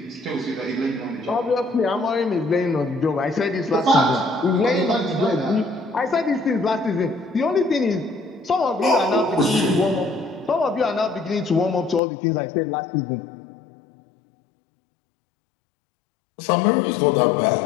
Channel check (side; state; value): right; drops out; at 12.0 s